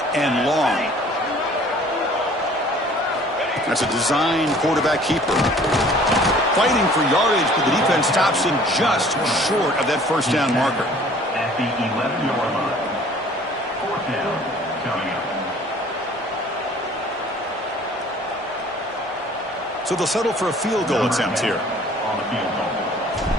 and long. That's a design quarterback keeper. Fighting for yardage, but the defense stops him just short of that first down marker. At the 11-yard line. Fourth down coming up. So they'll settle for a field goal attempt here. On the field goal.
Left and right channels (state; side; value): normal; both; correlation 0.52